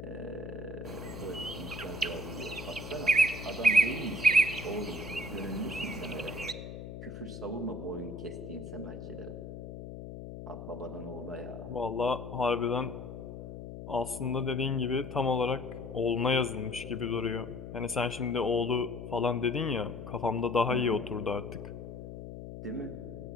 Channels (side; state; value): left; noise; hum, 10 dB below the sound